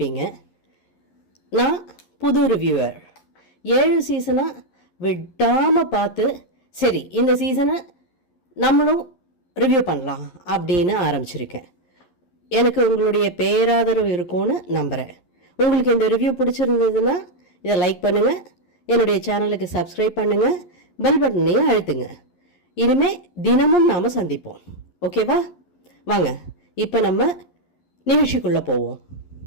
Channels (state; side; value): late; right; 11 ms